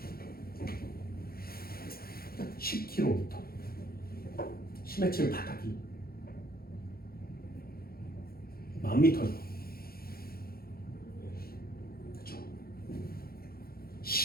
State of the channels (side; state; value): right; late; 0.44 ms